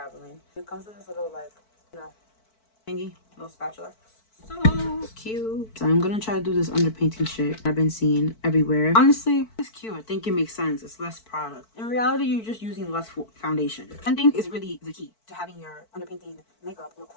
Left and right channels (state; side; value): late; right; 4.5 ms